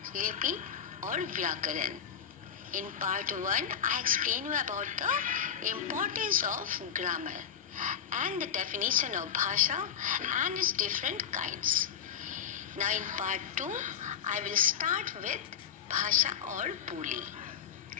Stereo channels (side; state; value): right; quieter; 8.3 dB